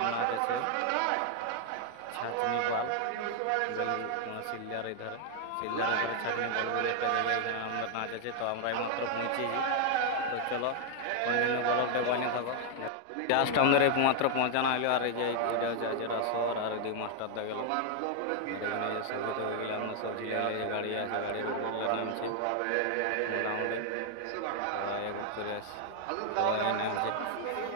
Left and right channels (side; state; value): both; different; correlation 0.00